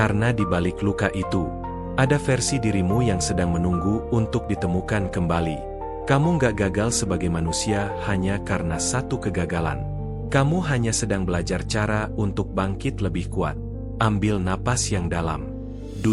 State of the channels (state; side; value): identical; both; correlation 1.00